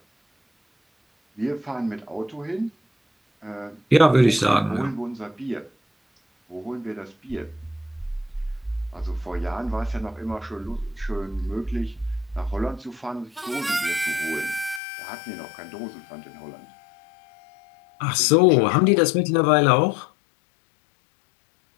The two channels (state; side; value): drops out; right; at 14.8 s